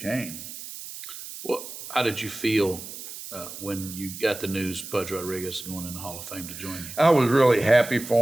Well, how did you feel when you got the news Pudge Rodriguez going in the Hall of Fame to join you? I was really happy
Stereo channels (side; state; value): right; noise; hiss, 11 dB below the sound